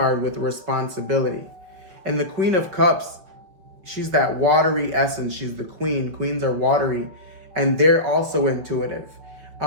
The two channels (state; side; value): late; left; 5.9 ms